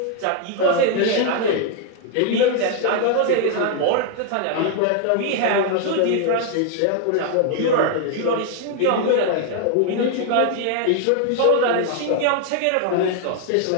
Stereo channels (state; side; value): different; both; correlation 0.00